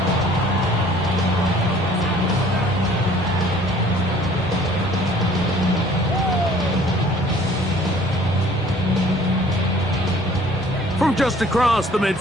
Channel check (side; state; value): both; normal; correlation 0.54